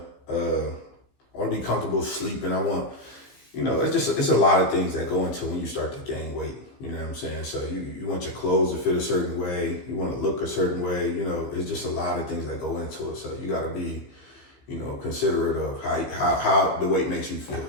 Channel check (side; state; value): right; late; 15 ms